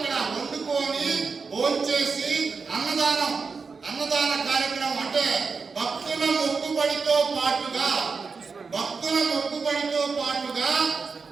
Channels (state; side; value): quieter; left; 4.9 dB